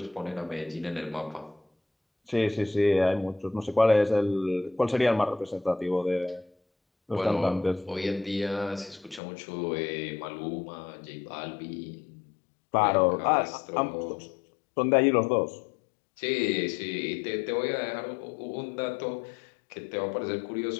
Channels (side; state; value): right; drops out; at 9.2 s